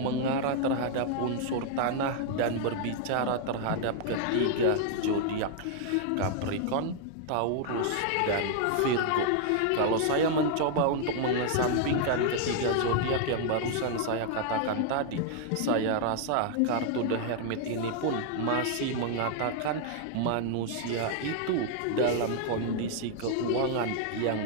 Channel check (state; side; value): different; both; correlation 0.00